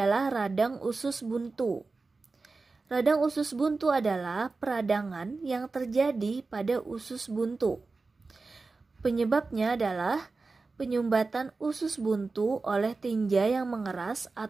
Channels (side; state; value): left; quieter; 3.9 dB